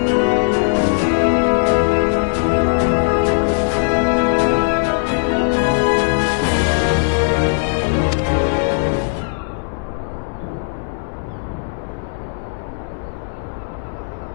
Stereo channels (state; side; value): silent; right; digital silence